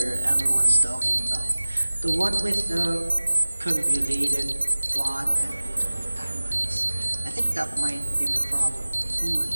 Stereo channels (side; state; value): both; inverted; correlation -1.00